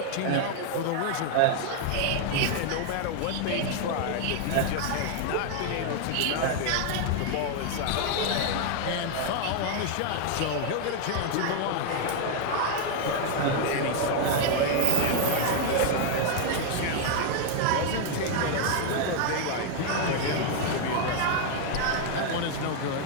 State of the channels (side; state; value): both; different; correlation 0.00